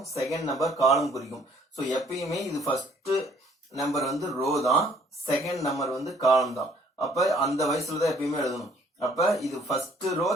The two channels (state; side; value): normal; both; correlation 0.60